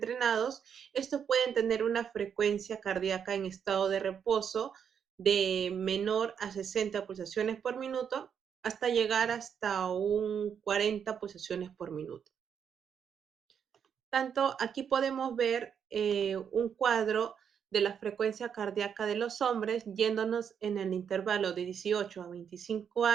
estos pueden tener una frecuencia cardíaca en estado de reposo de menor a 60 pulsaciones por minuto hasta llegar hasta un 40 pulsaciones por minuto. Tanto aquí podemos ver un cuadro de la frecuencia cardíaca de los hombres yéndonos en el intervalo de 18 a 25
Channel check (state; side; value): quieter; left; 7.7 dB